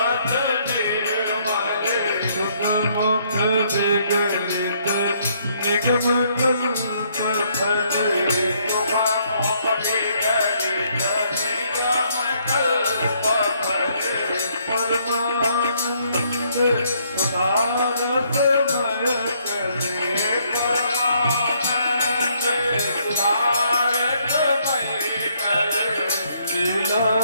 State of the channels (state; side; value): inverted; both; correlation -0.69